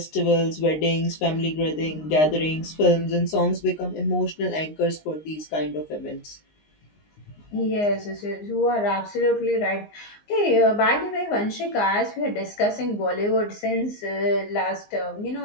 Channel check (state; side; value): late; right; 19 ms